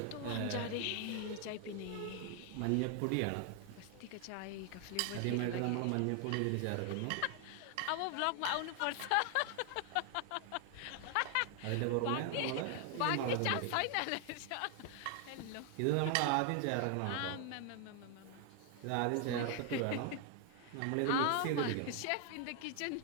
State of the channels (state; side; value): different; both; correlation 0.00